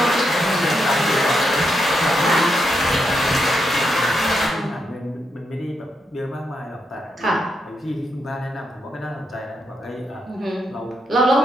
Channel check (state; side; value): normal; both; correlation 0.81